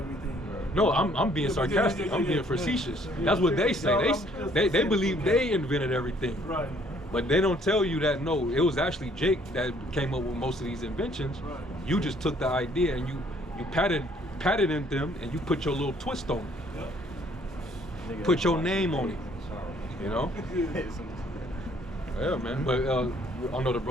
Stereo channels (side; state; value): both; normal; correlation 0.62